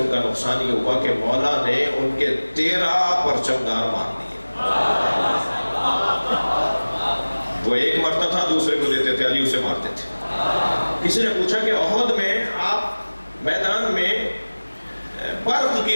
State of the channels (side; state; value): both; inverted; correlation -1.00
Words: کا نقصان یہ ہوا کہ مولا نے ان کے 13 پرچم دار مار دیے۔ وہ ایک مرتا تھا دوسرے کو دیتے تھے، علی اسے مارتے تھے۔ کسی نے پوچھا کہ احد میں آپ میدان میں برق کی